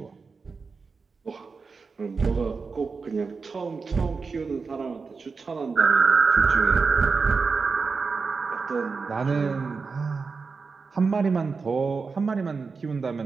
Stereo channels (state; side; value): quieter; left; 4.7 dB